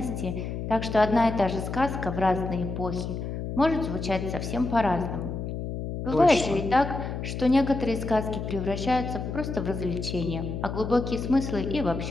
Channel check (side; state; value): left; noise; hum, 5 dB below the sound